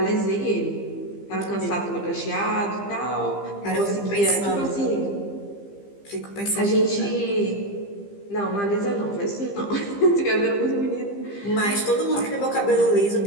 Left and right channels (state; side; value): late; right; 15 ms